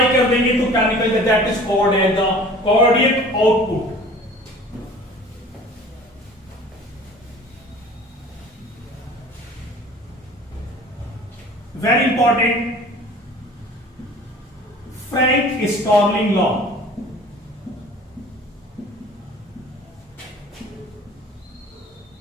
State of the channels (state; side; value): normal; both; correlation 0.45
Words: कर देंगे तो क्या निकलेगा? That is called as the cardiac output. Very important, Frank Starling law.